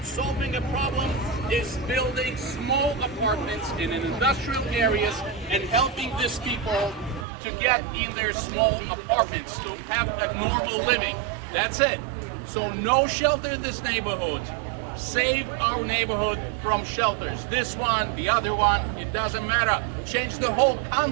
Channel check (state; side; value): drops out; left; at 7.2 s